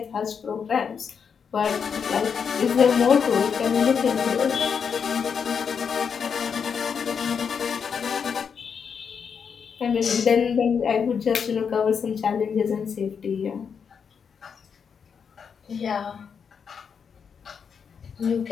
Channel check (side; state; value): right; quieter; 6.6 dB